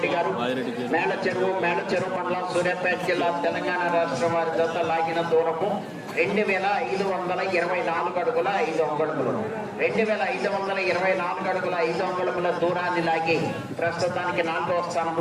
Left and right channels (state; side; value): identical; both; correlation 1.00